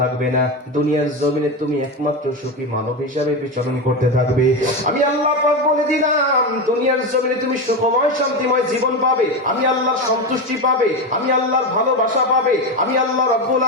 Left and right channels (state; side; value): normal; both; correlation 0.16